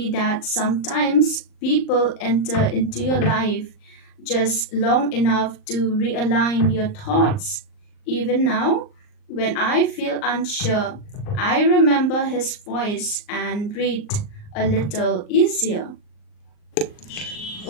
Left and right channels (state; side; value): late; right; 39 ms